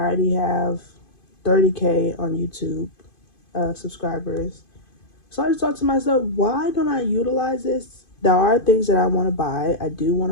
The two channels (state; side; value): late; right; 2.5 ms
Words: have 30K on YouTube subscribers. So I just thought to myself, why don't I utilize this? There are things that I want to buy. I do want